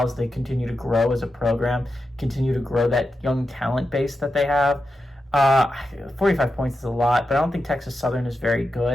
as they continue to grow as a program, continue to grow that young talent base that they have. 45 points is a lot, but I don't think Texas Southern is very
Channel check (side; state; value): both; normal; correlation 0.89